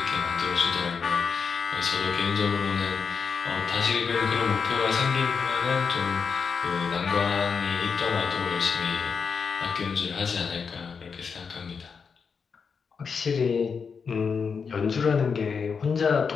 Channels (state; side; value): quieter; right; 5.8 dB